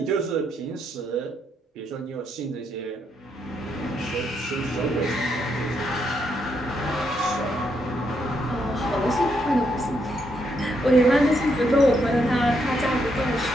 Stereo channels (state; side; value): normal; both; correlation 0.77